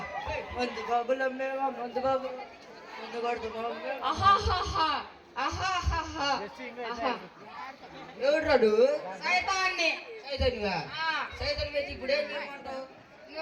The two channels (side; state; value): both; identical; correlation 1.00